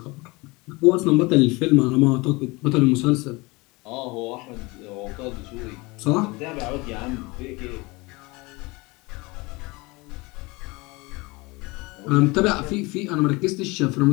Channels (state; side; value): quieter; right; 24.5 dB